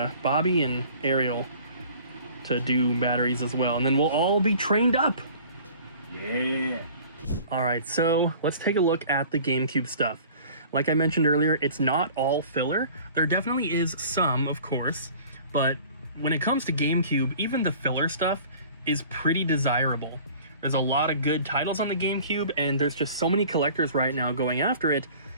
Bobby and Ariel to do batteries as well, and then we'll all be trained up. Yeah. All right, so let's take a look at the GameCube stuff. Like I mentioned earlier, it's not all filler. There definitely is some, of course, but when it comes to GameCube, even the filler stuff is pretty desirable. There's a lot of good titles on the GameCube, and there's just so many collectors right now going after it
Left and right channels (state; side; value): inverted; both; correlation -0.47